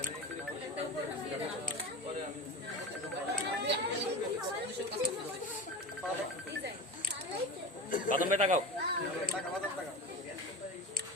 বাদাম ভাই তাকাও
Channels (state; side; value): normal; both; correlation 0.28